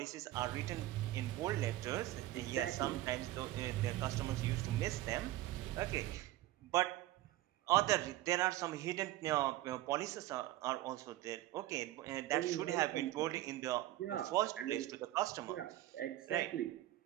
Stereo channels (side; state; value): left; quieter; 15.5 dB